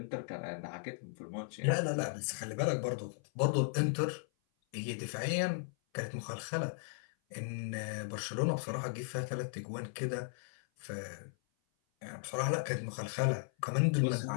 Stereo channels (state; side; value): silent; right; 53 dB below the other